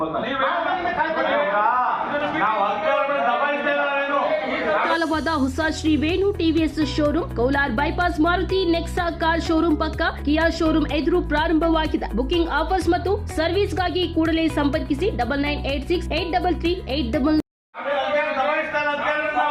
ಕಾಲವಾದ ಹೊಸ Shri Venu TVS showroom Kolar bypass Maruti Nexa car showroom ಪಕ್ಕ ಕಿಯಾ ಶೋರೂಮ್ ಎದುರು ಪ್ರಾರಂಭವಾಗಿದೆ. ಬುಕಿಂಗ್ ಆಫರ್ಸ್ ಮತ್ತು ಸರ್ವಿಸ್ಗಾಗಿ ಕೂಡಲೇ ಸಂಪರ್ಕಿಸಿ 9986833888.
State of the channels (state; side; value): identical; both; correlation 1.00